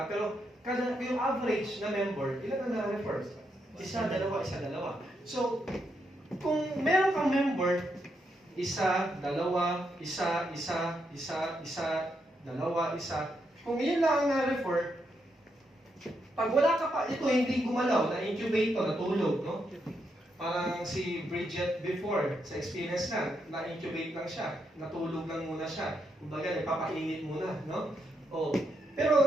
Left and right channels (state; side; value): normal; both; correlation 0.80